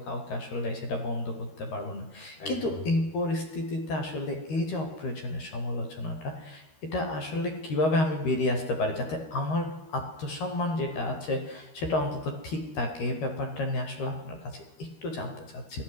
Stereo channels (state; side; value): late; right; 13 ms